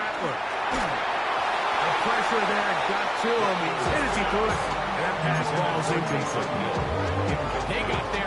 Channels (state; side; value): identical; both; correlation 1.00